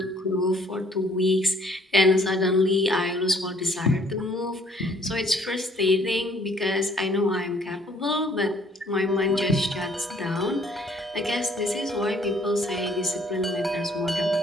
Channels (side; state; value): both; normal; correlation 0.61